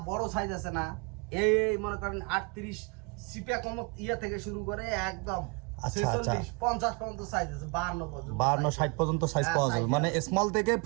বড় সাইজ আছে না, এই মনে করেন 38 সিপে কম ইয়া থেকে শুরু করে একদম 46 50 পর্যন্ত সাইজ আছে, 52 পর্যন্ত, 52 60 পর্যন্ত সাইজ পাওয়া যাবে। মানে স্মল থেকে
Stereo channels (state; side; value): quieter; left; 30.6 dB